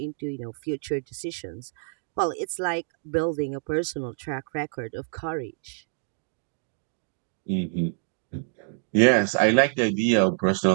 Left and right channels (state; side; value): silent; left; digital silence